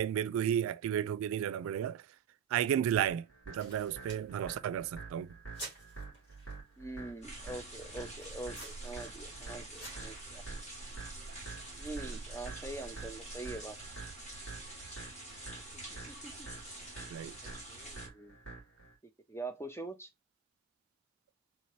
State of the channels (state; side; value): quieter; left; 7.2 dB